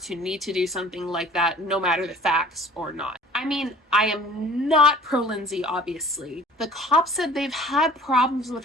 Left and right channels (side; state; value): both; normal; correlation 0.48